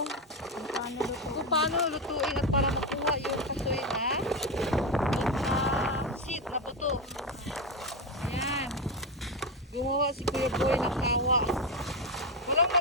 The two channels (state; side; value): normal; both; correlation 0.12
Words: lutuin at para makuha yung kasoy na seed na buto. Ayan. Gumawa si Kuya Boy ng kawa. Walang